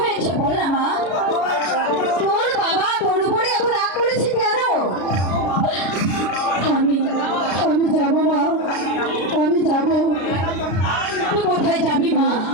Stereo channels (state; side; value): late; right; 33 ms